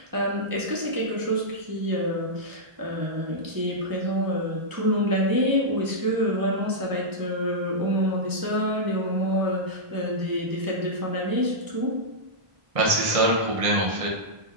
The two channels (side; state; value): left; late; 1.6 ms